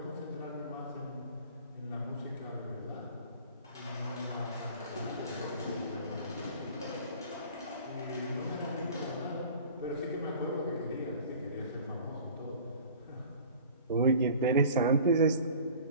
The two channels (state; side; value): inverted; both; correlation -0.45